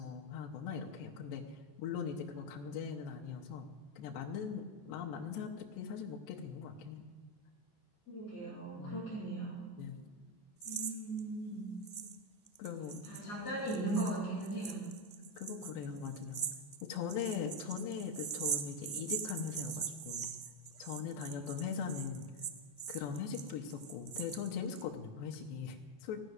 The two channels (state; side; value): late; right; 14 ms